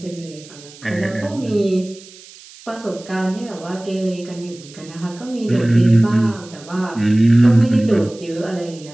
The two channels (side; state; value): right; noise; hiss, 21 dB below the sound